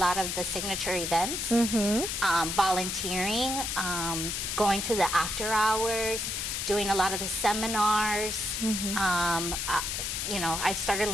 of the signature events, volunteering, going to the after hours, doing a lot of the seminars. I've started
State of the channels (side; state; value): left; noise; hiss, 2 dB below the sound